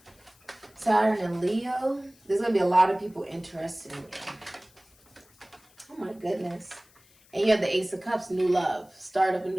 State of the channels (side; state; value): left; noise; hiss, 29 dB below the sound